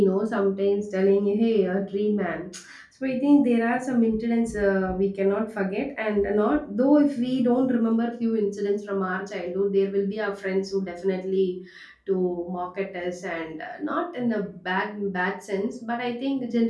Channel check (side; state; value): both; identical; correlation 1.00